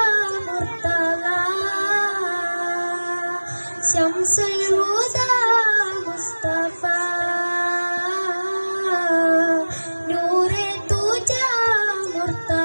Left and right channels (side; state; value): both; inverted; correlation -1.00